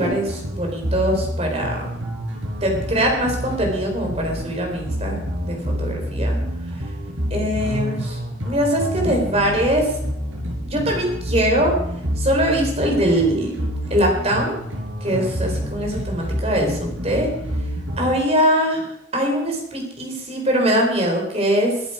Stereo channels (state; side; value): normal; both; correlation 0.38